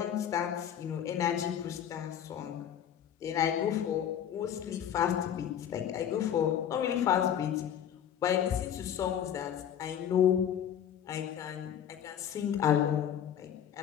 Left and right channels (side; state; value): right; quieter; 9.5 dB